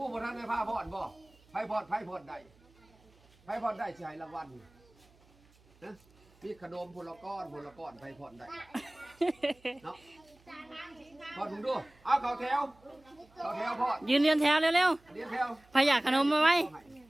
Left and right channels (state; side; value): noise; right; hum, 29 dB below the sound